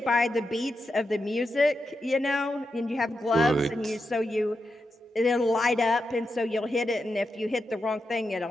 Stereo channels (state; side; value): normal; both; correlation 0.87